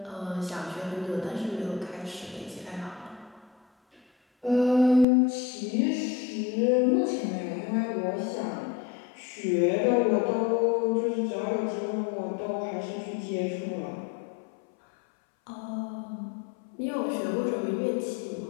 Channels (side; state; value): right; drops out; at 5.1 s